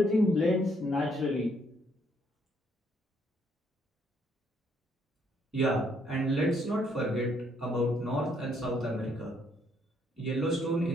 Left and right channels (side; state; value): both; normal; correlation 0.70